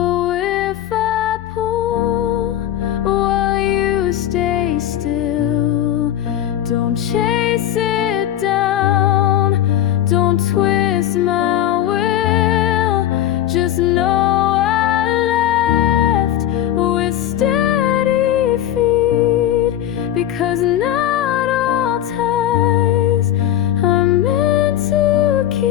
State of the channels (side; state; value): right; quieter; 11.9 dB